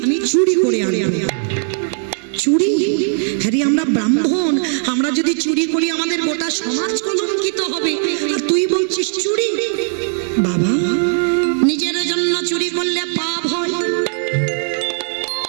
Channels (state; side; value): silent; left; digital silence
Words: চুরি করে আনবো। চুরি? হ্যাঁ রে, আমরা ব্রাহ্মণ, আমরা যদি চুরি করি আমাদের গোটা সমাজ কলঙ্কিত হবে, আর তুই বলছিস চুরি? বাবা নিজের জন্য চুরি করলে পাপ হয়।